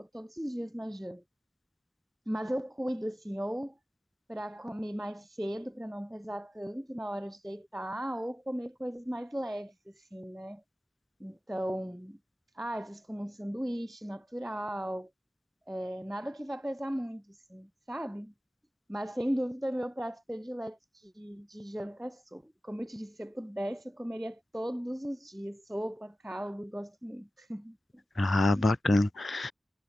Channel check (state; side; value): normal; both; correlation 0.95